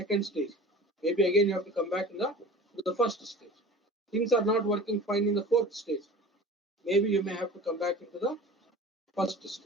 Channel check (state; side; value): normal; both; correlation 0.40